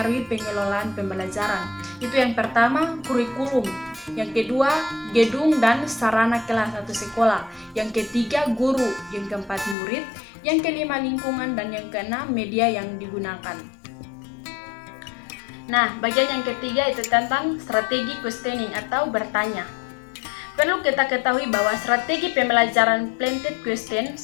pengelolaan pembelajaran. Itu yang pertama, kurikulum. Yang kedua, gedung dan sarana kelas atau sekolah. Yang ketiga, guru. Yang keempat, murid. Yang kelima, lingkungan. Dan yang keenam, media yang digunakan. Nah, bagian yang ketiga itu tentang strategi questioning atau bertanya. Perlu kita ketahui bahwa strategi pembelajaran planted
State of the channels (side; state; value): right; drops out; at 9.8 s